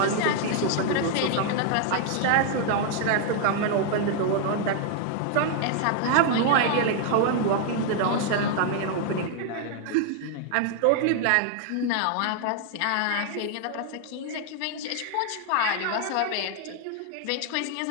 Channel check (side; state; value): both; different; correlation 0.00